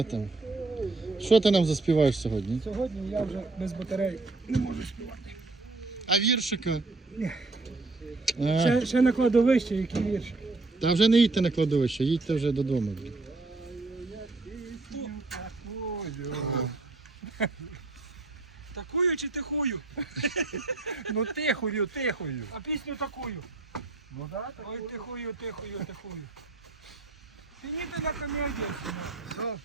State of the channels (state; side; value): quieter; left; 3.4 dB